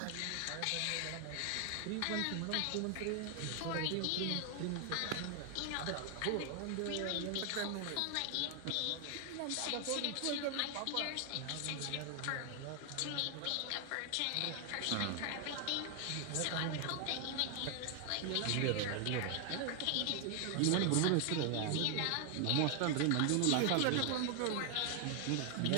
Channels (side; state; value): both; different; correlation 0.00